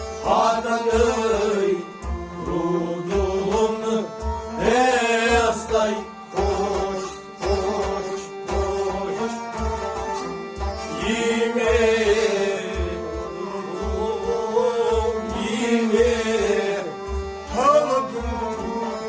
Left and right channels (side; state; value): both; identical; correlation 1.00